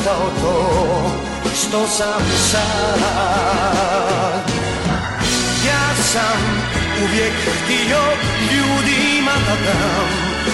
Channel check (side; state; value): both; identical; correlation 1.00